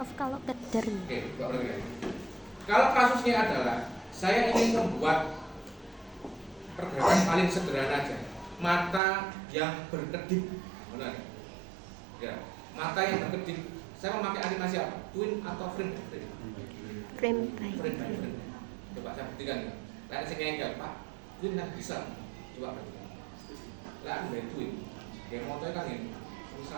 kalau keder. Oke, kalau kasusnya adalah saya ingin membuat pergerakan paling sederhana aja, mata yang berkedip, benar? Ya, mata yang berkedip. Saya memakai animasi apa? Twin atau frame by frame? Frame by Frame by frame. Coba saya buktikan ya. Lihat saya ngengkel, Pak. Twin kan bisa. Coba buktikan. Lihat dari twin. Kayak motornya kan ini,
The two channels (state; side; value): drops out; left; at 9.0 s